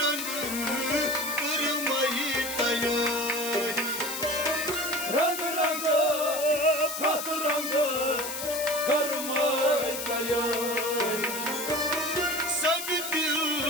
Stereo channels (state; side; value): noise; left; hiss, 5 dB below the sound